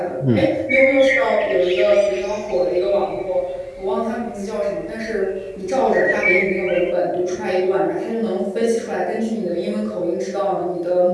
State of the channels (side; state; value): both; identical; correlation 1.00